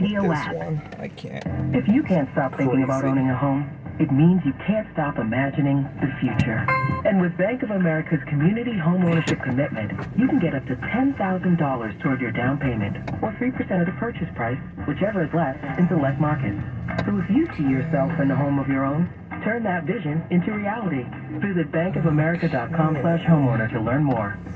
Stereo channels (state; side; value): identical; both; correlation 1.00